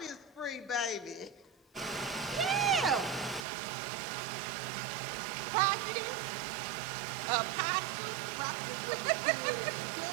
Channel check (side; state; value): left; drops out; at 3.5 s